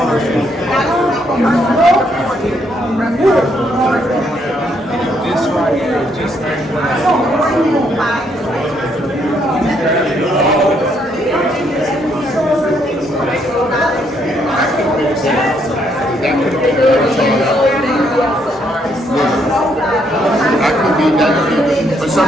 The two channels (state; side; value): normal; both; correlation 0.72